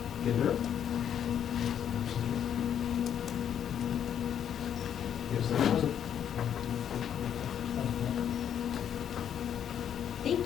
Ginder. Absent. Gibson present. Thank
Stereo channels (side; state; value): right; quieter; 9.1 dB